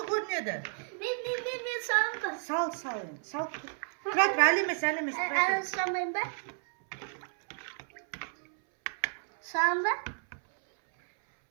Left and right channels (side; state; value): left; silent; 57 dB below the other